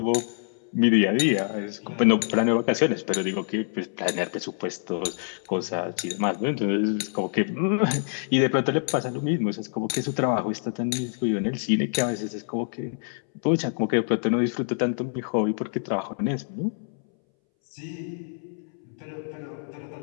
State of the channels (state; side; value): silent; right; 61 dB below the other